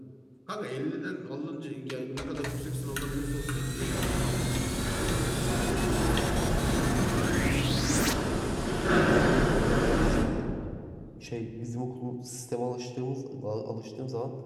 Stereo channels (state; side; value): identical; both; correlation 1.00